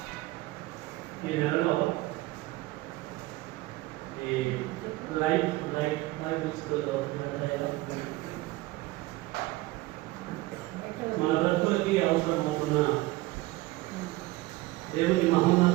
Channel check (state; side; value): quieter; left; 19.4 dB